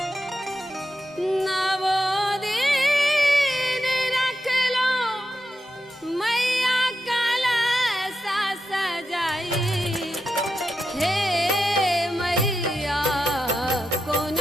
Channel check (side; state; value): both; normal; correlation 0.88